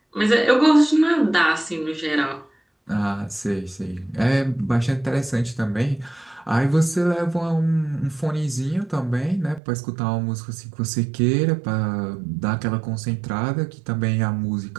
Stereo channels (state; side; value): drops out; left; at 9.6 s